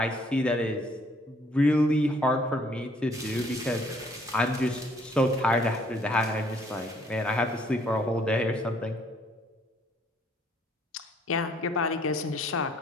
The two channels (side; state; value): both; normal; correlation 0.63